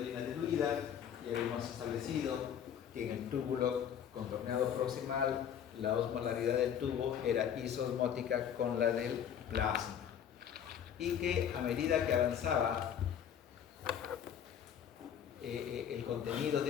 orina diluida. Ya habíamos establecido que en el túbulo contorneado proximal la osmolaridad del tubo era isosmótica con la del plasma, y que a medida que avanzaba el contenido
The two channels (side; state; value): right; quieter; 8.9 dB